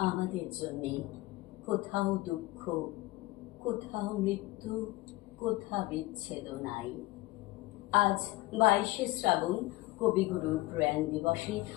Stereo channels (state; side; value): quieter; right; 19.6 dB